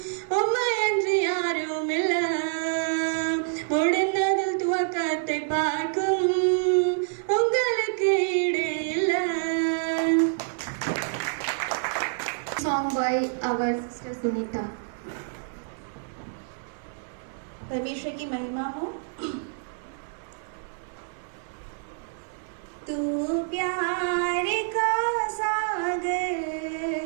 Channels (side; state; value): left; silent; 60 dB below the other